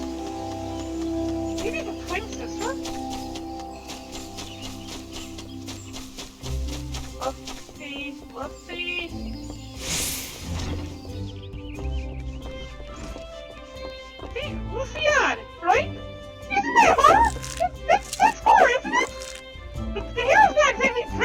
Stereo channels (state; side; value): identical; both; correlation 1.00